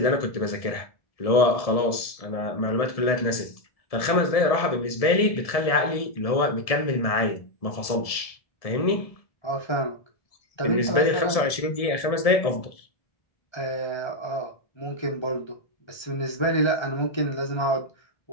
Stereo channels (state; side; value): late; right; 1.7 ms